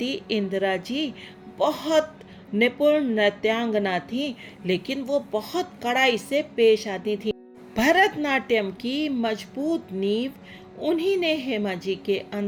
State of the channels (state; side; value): identical; both; correlation 1.00